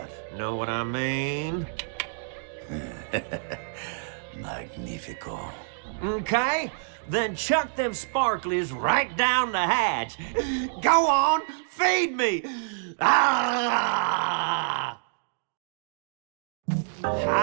Know what I mean? Magnifico. Okay, then chuck them sparklies right down the hatch. Go on, feed me! Ah!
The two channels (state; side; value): silent; left; digital silence